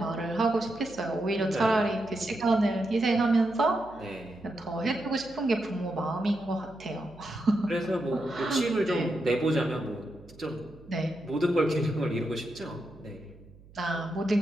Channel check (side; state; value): right; noise; hum, 23 dB below the sound